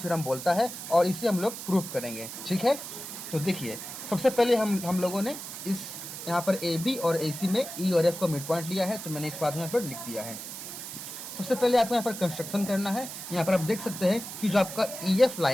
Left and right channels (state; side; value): noise; right; hiss, 9 dB below the sound